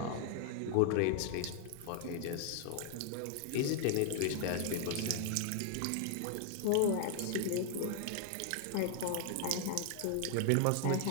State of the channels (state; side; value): different; both; correlation 0.00